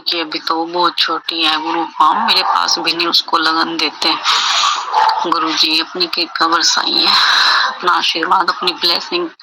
अभी तो वो बहुत छोटी है गुरु। हाँ, मेरे पास भी नहीं उसको लगन देते। गुरु जी अपनी कृपा बरसाइए, अपना आशीर्वाद, अपनी ब्लेसिंग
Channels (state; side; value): identical; both; correlation 1.00